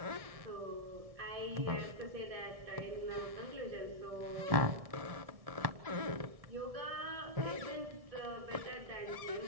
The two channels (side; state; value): left; late; 1.6 ms